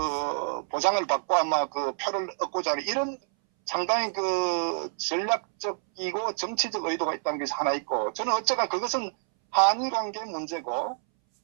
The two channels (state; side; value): silent; left; 60 dB below the other